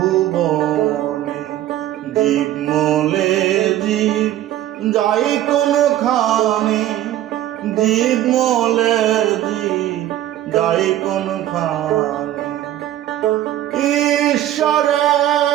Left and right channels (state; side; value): quieter; left; 13.0 dB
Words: মলে জীব যাই কোন খানে, জীব মলে জীব যাই কোন খানে।